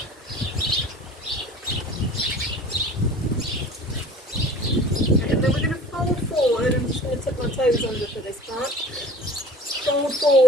Okay, and then we're going to fold forward. I'm just going to tuck my toes under for this part. Fold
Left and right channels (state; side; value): normal; both; correlation 0.45